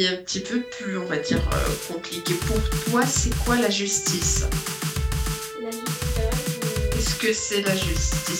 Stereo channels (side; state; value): both; identical; correlation 1.00